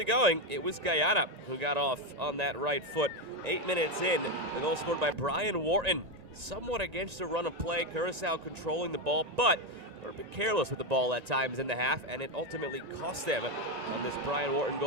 going, it was Guyana who got off on that right foot. 8 minutes in, the goal scored by Brian Wharton. Somewhat against a run of play, Curaçao controlling the ball, but they were a bit careless with the ball at times in the half, and it ultimately cost them on this Brian Wharton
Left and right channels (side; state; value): left; late; 1.9 ms